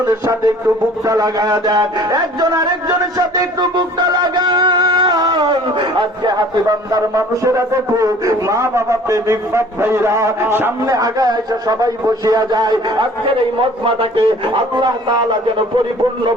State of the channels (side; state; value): both; normal; correlation 0.50